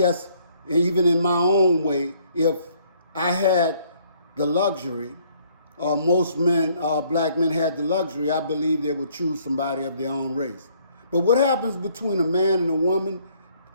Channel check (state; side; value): inverted; both; correlation -0.64